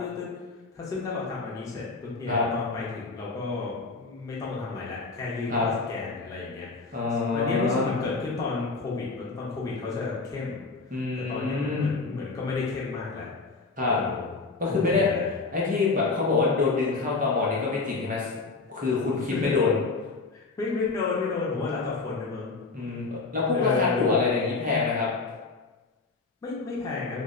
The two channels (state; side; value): quieter; right; 3.9 dB